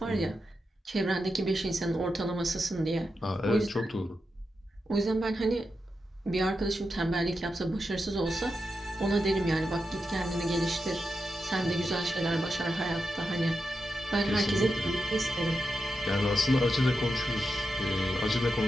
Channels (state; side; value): normal; both; correlation 0.88